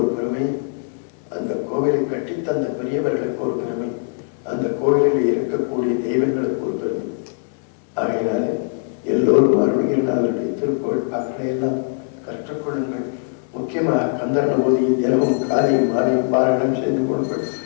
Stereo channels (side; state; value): right; silent; digital silence